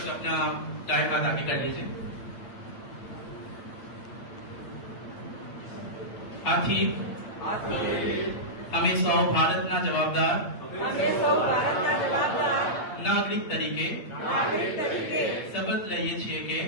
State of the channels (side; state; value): right; late; 8.8 ms